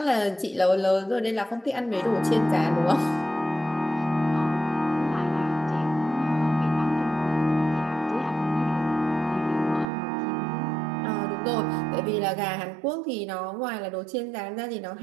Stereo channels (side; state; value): left; drops out; at 9.9 s